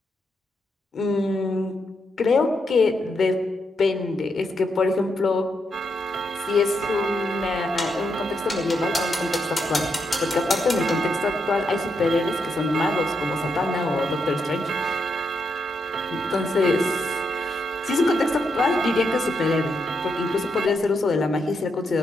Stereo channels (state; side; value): normal; both; correlation 0.81